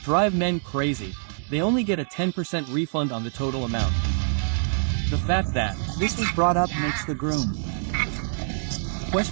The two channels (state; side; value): silent; left; digital silence